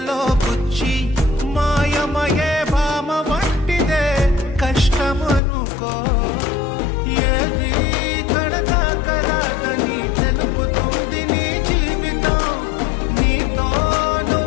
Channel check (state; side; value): drops out; right; at 5.4 s